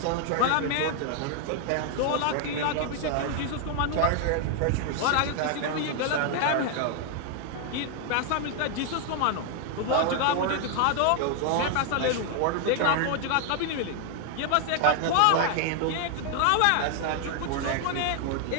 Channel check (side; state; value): both; different; correlation 0.00